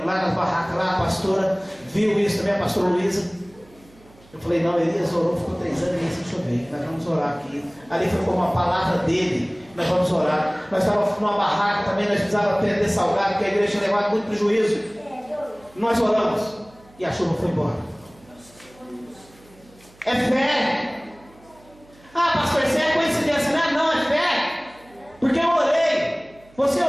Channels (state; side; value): noise; right; hum, 27 dB below the sound